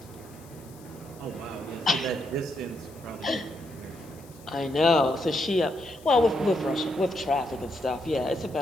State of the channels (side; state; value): left; noise; hiss, 24 dB below the sound